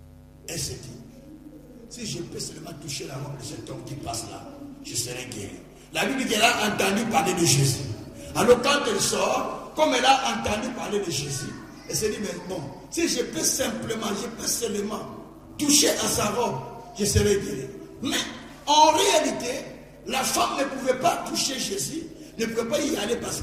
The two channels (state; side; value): identical; both; correlation 1.00